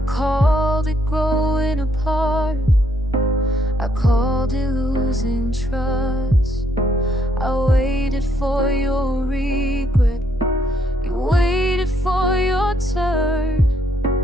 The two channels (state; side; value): normal; both; correlation 0.72